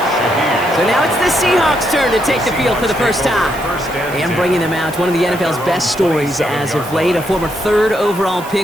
So now it's the Seahawks' turn to take the field for the first time. And bringing them out, one of the NFL's best stories as of late, a former 3rd overall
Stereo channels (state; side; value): noise; right; hiss, 17 dB below the sound